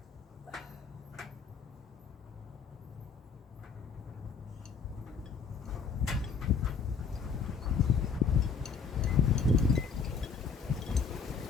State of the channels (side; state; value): right; quieter; 5.8 dB